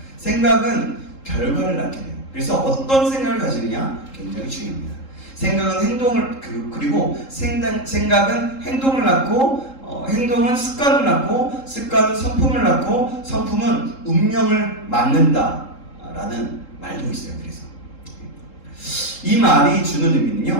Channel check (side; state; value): right; late; 3.7 ms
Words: 생각은 결과를 낳게 돼요. 그래서 어떤 생각을 가지느냐 굉장히 중요합니다. 생각은 그리고 생각은 행동을 낳고, 행동은 습관을 낳고, 습관은 성품을 낳고, 성품은 운명을 만든다라는 말도 있어요. 그래서 이 말이 주는